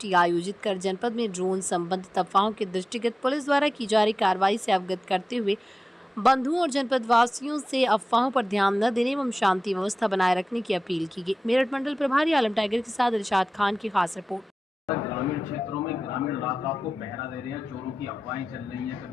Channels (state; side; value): normal; both; correlation 0.95